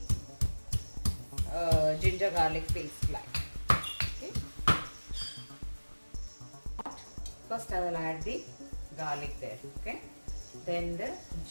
ginger garlic paste like. Okay. First I will add the garlic there. Okay. Then the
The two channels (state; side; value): inverted; both; correlation -1.00